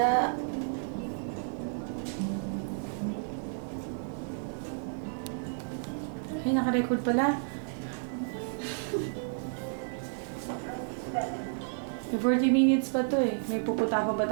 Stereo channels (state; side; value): silent; left; digital silence